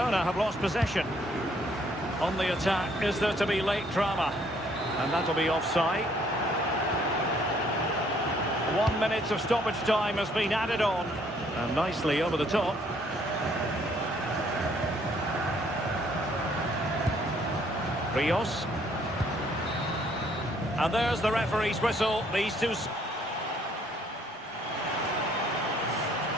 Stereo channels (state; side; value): normal; both; correlation 0.64